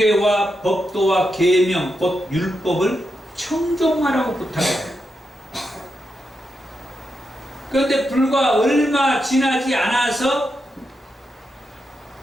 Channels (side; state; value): both; normal; correlation 0.85